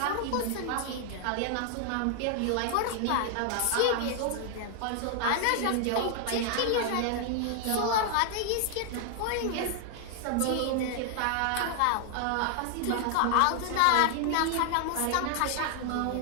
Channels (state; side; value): different; both; correlation 0.00